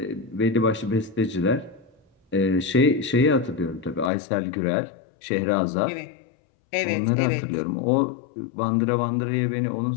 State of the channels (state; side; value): drops out; right; at 4.1 s